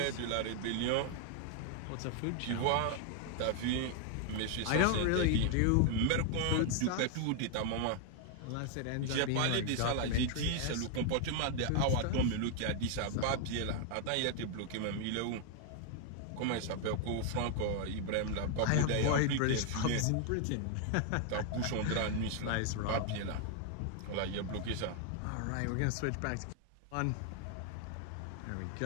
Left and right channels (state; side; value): different; both; correlation 0.00